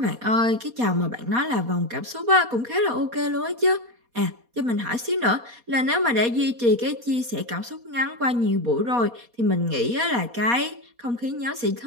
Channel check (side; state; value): left; late; 4.2 ms